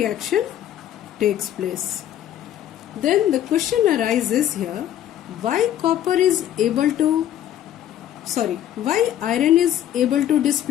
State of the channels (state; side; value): quieter; right; 11.4 dB